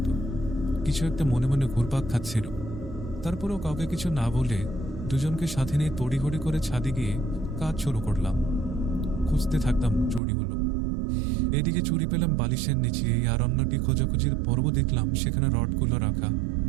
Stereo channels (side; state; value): left; drops out; at 10.2 s